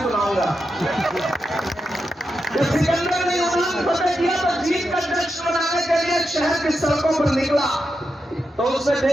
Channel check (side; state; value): both; normal; correlation 0.87